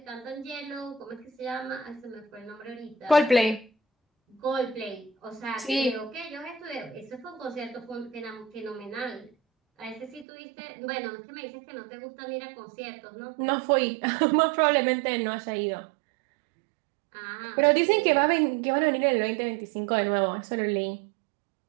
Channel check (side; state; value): left; drops out; at 10.2 s